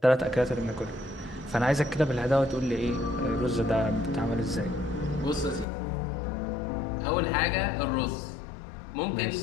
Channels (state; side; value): drops out; right; at 5.7 s